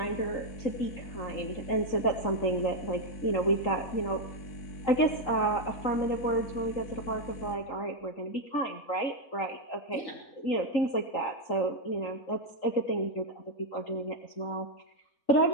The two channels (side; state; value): right; late; 3.8 ms